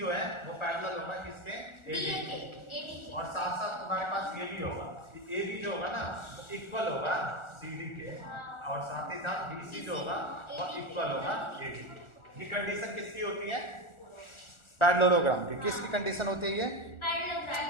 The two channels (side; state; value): right; late; 1.4 ms